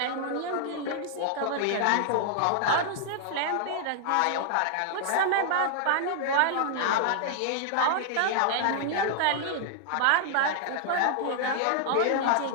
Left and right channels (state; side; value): different; both; correlation 0.00